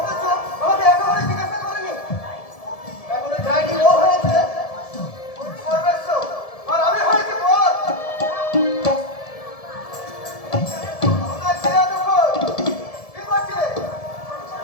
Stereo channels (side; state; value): right; late; 1.7 ms